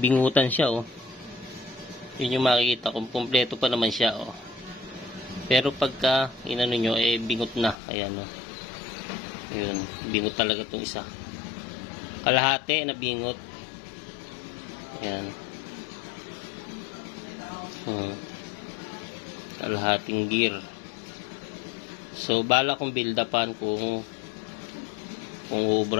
siya, oh. Yun yung makikita kung kompleto pa naman siya, oh. Pero pagka inano nyo, bingot na. Ayan, oh. Yun, bingot talaga tong isa. Kalahati na bingot. Ayan. Kalahating gear. So bala kong build upan kung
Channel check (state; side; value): drops out; right; at 7.8 s